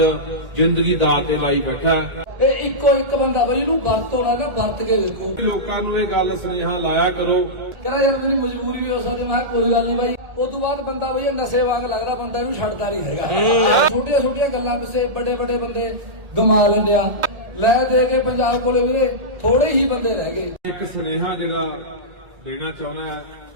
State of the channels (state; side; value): late; left; 1.9 ms